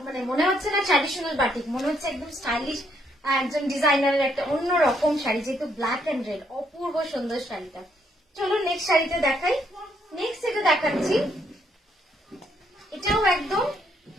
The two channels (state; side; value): normal; both; correlation 0.72